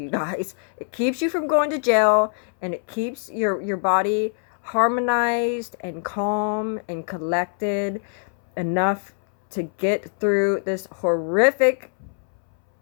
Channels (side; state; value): right; silent; 62 dB below the other